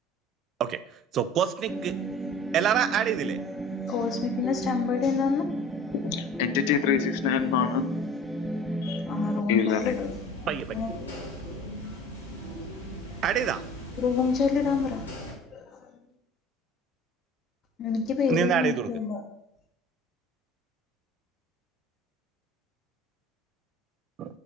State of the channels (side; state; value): both; normal; correlation 0.44